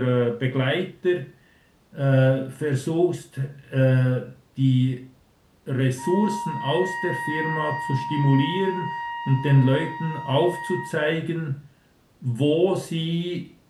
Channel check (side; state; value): both; identical; correlation 1.00